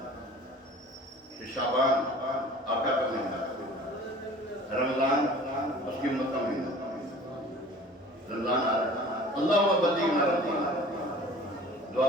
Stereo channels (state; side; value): normal; both; correlation 0.45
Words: شعبان آقا کا مہینہ, رمضان اس کی امت کا مہینہ. رمضان آ رہا ہے. اللہم بلغنا رمضان. دعا